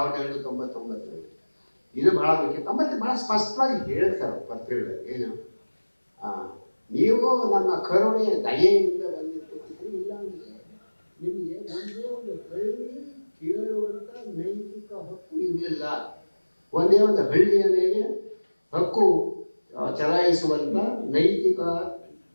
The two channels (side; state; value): both; inverted; correlation -1.00